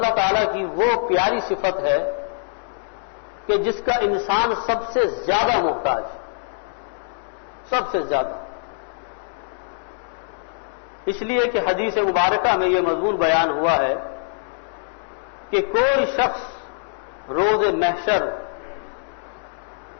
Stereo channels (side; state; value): right; silent; digital silence